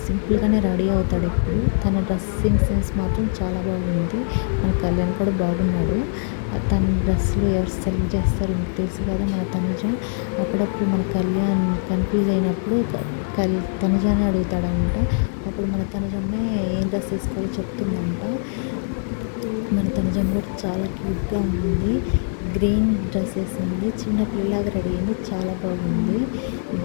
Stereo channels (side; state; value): right; silent; 61 dB below the other